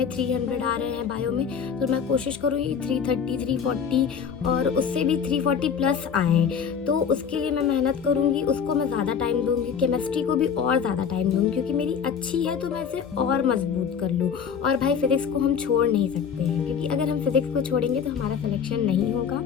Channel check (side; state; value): right; quieter; 7.0 dB